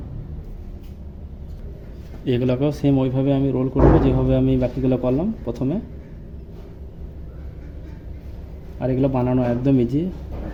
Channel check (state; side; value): identical; both; correlation 1.00